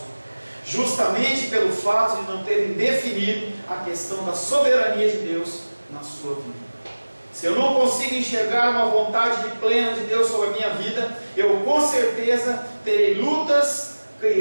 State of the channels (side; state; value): both; inverted; correlation -1.00